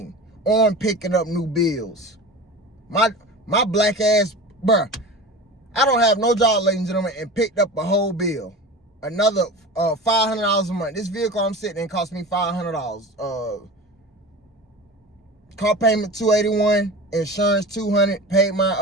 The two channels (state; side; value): normal; both; correlation 0.33